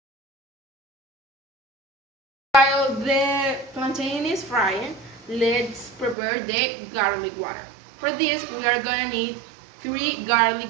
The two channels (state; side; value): drops out; left; at 6.2 s